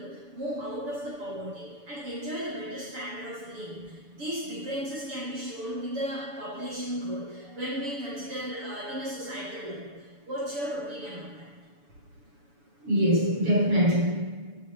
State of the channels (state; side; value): late; left; 7.0 ms